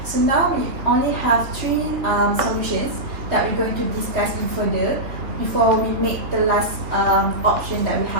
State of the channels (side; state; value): left; late; 3.1 ms